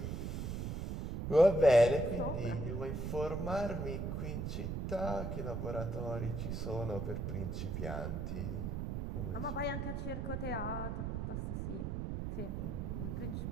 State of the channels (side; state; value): right; noise; rumble, 3 dB below the sound